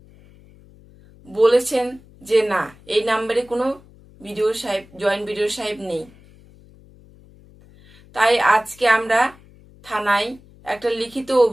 বলেছেন যে না, এই নাম্বারে কোনো বিডিও সাহেব, জয়েন্ট বিডিও সাহেব নেই। তাই আজকে আমরা থানায় একটা লিখিত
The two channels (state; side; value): noise; left; hum, 25 dB below the sound